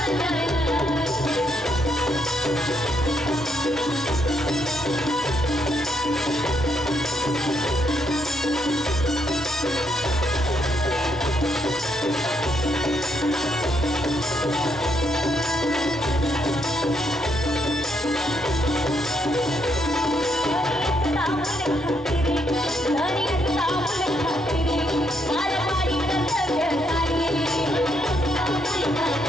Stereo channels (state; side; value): normal; both; correlation 0.75